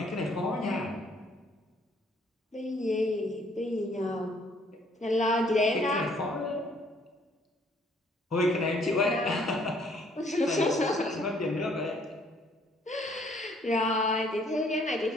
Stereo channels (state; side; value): normal; both; correlation 0.63